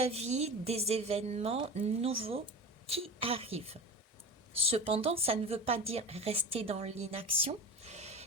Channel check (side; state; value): both; normal; correlation 0.30